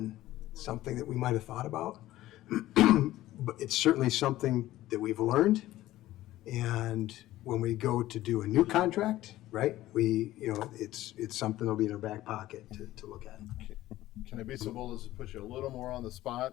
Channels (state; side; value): quieter; right; 15.4 dB